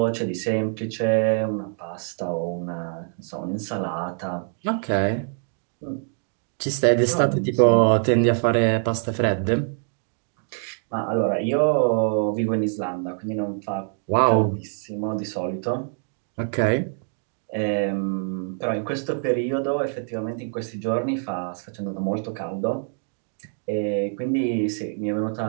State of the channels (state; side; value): silent; left; 58 dB below the other